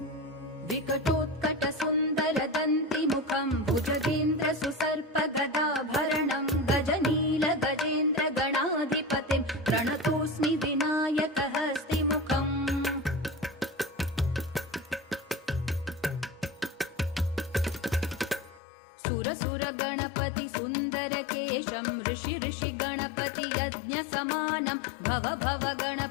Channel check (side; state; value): right; drops out; at 18.6 s